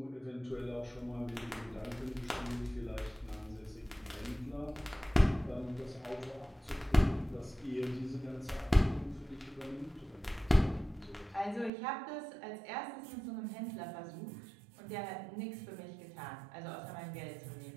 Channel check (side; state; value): left; drops out; at 11.7 s